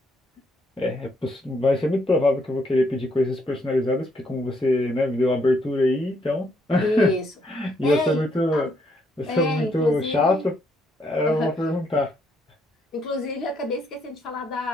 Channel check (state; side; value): normal; both; correlation 0.73